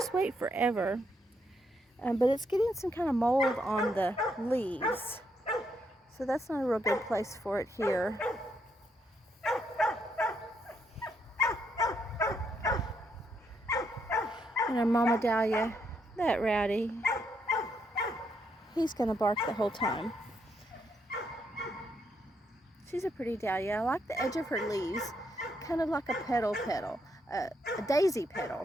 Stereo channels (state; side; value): normal; both; correlation 0.76